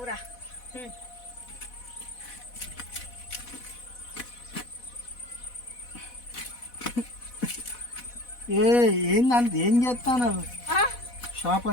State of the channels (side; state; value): right; late; 4.1 ms